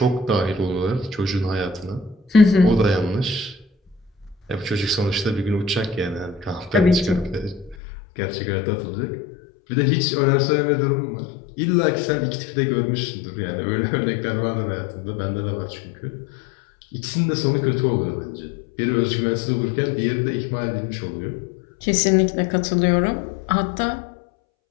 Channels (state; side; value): drops out; right; at 7.8 s